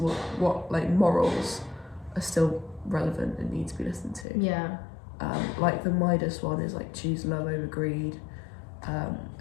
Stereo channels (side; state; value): right; drops out; at 4.2 s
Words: what like morals are still relevant and need to be listened to. Like the Midas one is like choose love over greed,